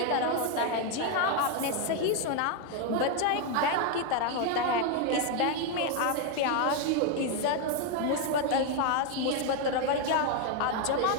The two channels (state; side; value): different; both; correlation 0.01